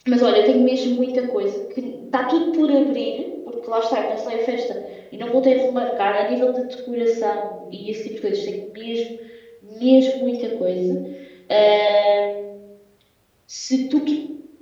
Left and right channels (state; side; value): identical; both; correlation 1.00